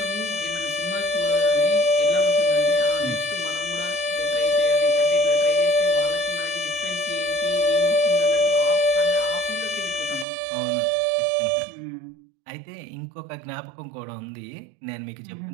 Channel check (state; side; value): drops out; left; at 10.2 s